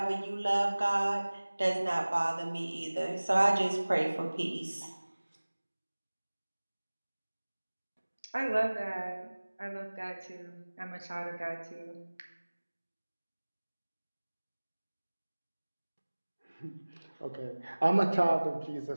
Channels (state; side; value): inverted; both; correlation -1.00